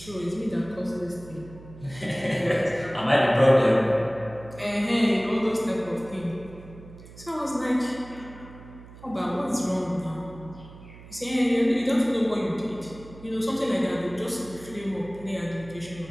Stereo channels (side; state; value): right; noise; hum, 18 dB below the sound